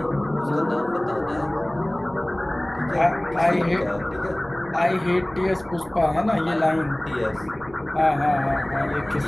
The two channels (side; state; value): right; noise; rumble, 22 dB below the sound